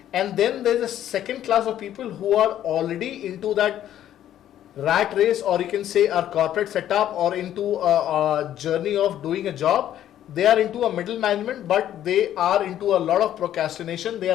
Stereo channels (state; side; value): quieter; right; 11.5 dB